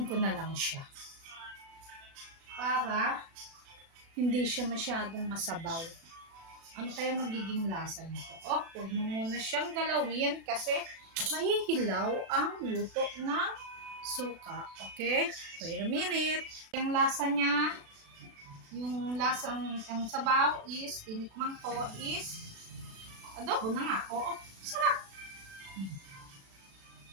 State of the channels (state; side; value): late; left; 36 ms